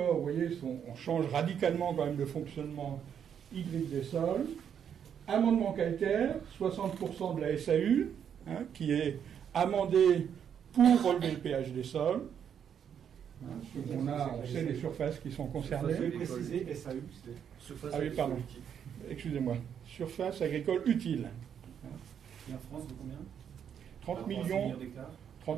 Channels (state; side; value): quieter; left; 8.3 dB